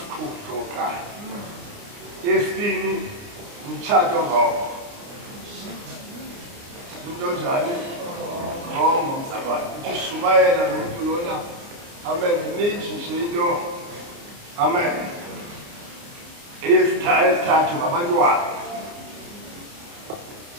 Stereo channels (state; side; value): late; left; 29 ms